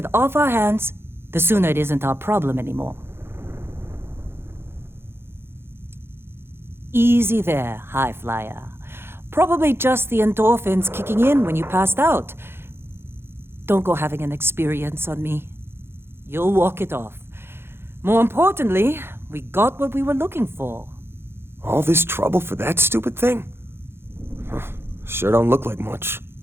off our hands, the sooner it isn't our problem anymore. Easy there, high flyer. Probably just the endorphins kicking in when you passed out. Don't go having an experience on me. You'll walk it off. More importantly, we got what we were looking for. All this trouble for that stupid thing? Huh, sure don't look like much.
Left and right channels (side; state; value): left; late; 0.11 ms